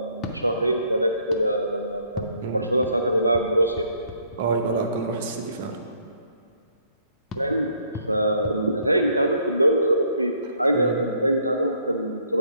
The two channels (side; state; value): both; inverted; correlation -0.65